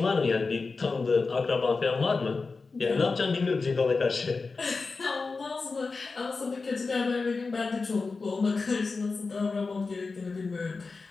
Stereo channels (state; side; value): quieter; right; 4.2 dB